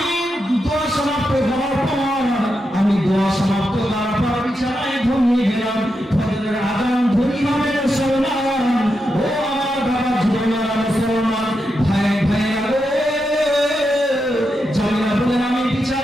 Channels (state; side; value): normal; both; correlation 0.86